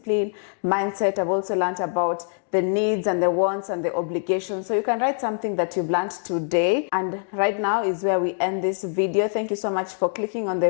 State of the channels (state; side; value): silent; right; digital silence